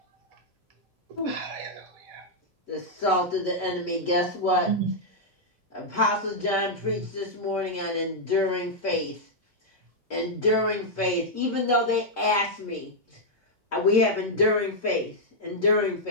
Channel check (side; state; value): both; normal; correlation -0.04